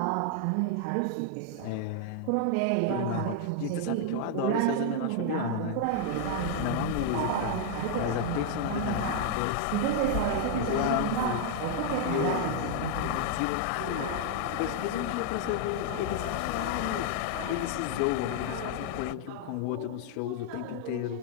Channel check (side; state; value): both; different; correlation 0.00